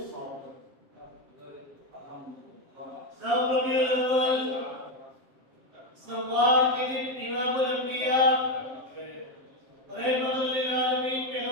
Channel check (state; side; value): late; left; 7.4 ms